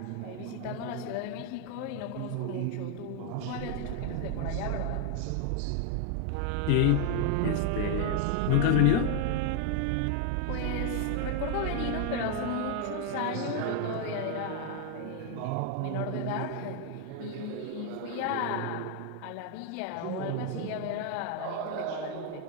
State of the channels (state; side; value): different; both; correlation 0.01